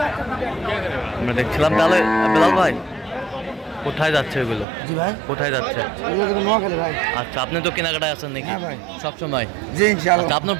আমরা দেখছিলাম তাহলে বেলাল ভাই কোথায় যাচ্ছে এগুলো? জি ভাই কোথায় যাচ্ছে? এগুলো তো নোয়াখালী ভাই আচ্ছা আপনি তো কেনাকাটায় আছেন নাকি? হ্যাঁ ভাই। সবসময়? জি ইনশাআল্লাহ আচ্ছা আপনার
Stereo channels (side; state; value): left; drops out; at 4.7 s